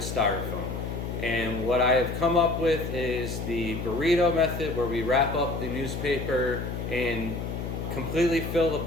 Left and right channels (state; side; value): noise; left; hum, 5 dB below the sound